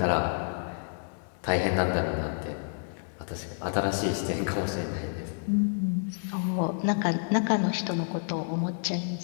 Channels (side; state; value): right; silent; digital silence